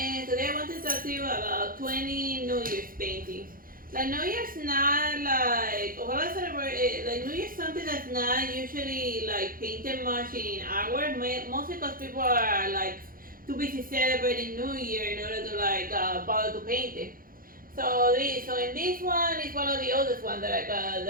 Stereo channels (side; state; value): left; late; 0.41 ms